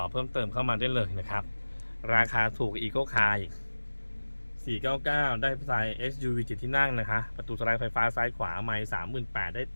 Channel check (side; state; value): both; inverted; correlation -1.00